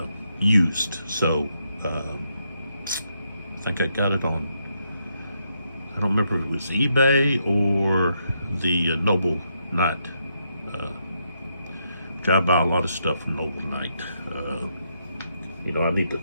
used, so I think I got it on, I don't remember if it was eBay or the Noble Knight. I buy a lot of stuff from Noble Knight. You know, I need to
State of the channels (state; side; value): inverted; both; correlation -0.79